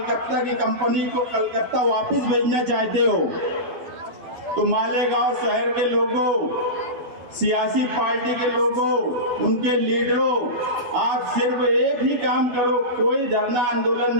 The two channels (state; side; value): late; left; 12 ms